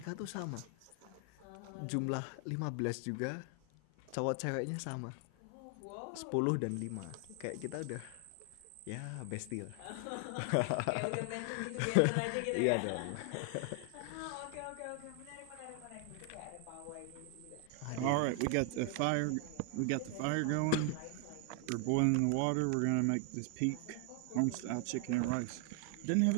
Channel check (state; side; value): different; both; correlation 0.00